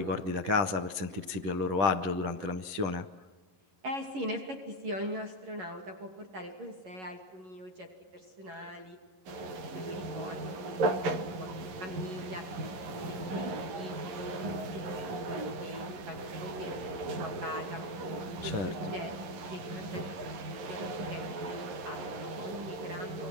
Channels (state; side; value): late; left; 11 ms